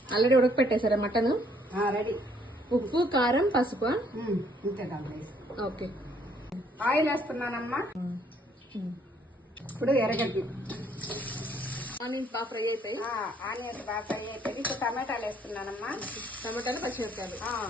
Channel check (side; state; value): both; normal; correlation 0.65